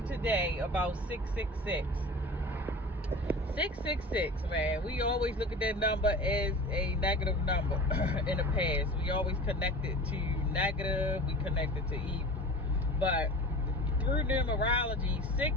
today about 666. 666, man, we always look at that number as a negative number in the past. We always connect it to negative, we connect it to evil. But through numerology,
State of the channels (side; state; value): both; normal; correlation 0.36